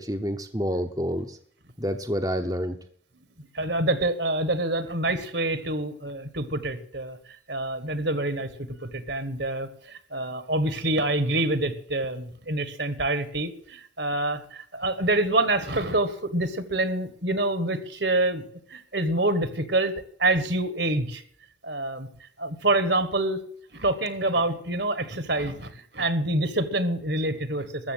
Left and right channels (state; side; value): normal; both; correlation 0.08